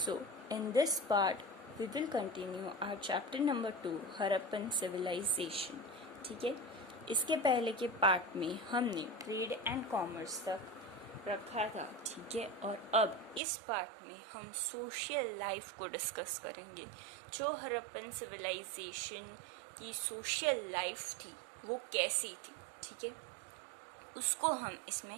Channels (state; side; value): drops out; left; at 13.4 s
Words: in this part, we will continue our chapter number 2, Harappan civilization. ठीक है, इसके पहले के part में हमने ट्रेड एंड कॉमर्स तक रखा था. ठीक है, और अब इस पार्ट में हम सोशल लाइफ को डिस्कस करेंगे. जो हड़प्पन सिविलाइजेशन की सोशल लाइफ थी वो कैसी थी. ठीक है, उसको हम